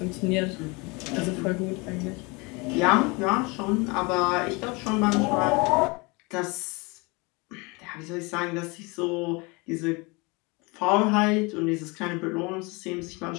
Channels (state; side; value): quieter; right; 27.4 dB